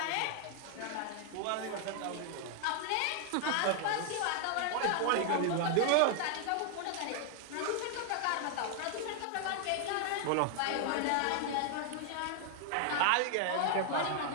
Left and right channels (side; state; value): both; different; correlation 0.00